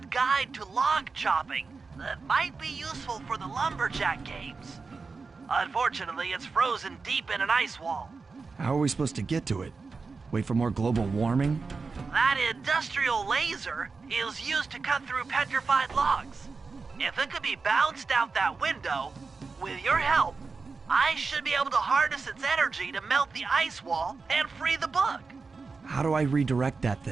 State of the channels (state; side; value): quieter; left; 4.4 dB